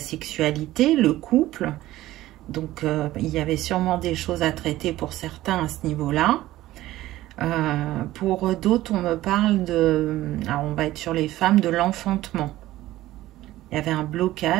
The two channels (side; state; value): left; quieter; 15.7 dB